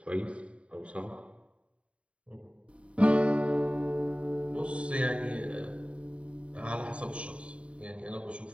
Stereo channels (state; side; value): late; left; 0.061 ms